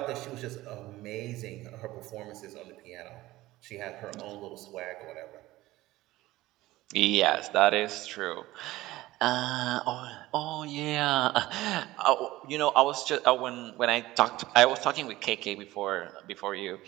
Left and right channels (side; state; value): left; quieter; 17.4 dB